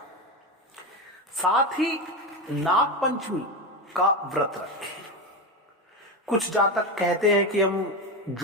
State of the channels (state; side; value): normal; both; correlation 0.17